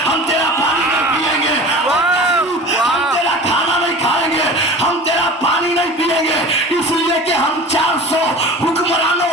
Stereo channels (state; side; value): normal; both; correlation 0.37